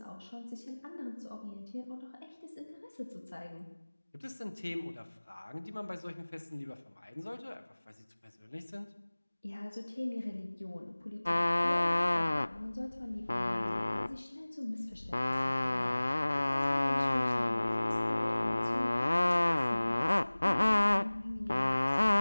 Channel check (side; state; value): both; inverted; correlation -1.00